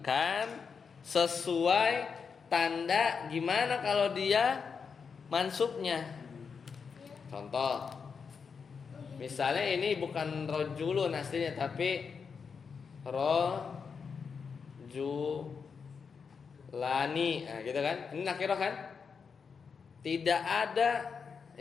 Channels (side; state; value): right; quieter; 5.8 dB